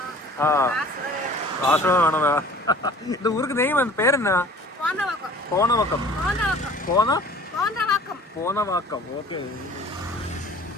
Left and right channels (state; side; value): normal; both; correlation 0.47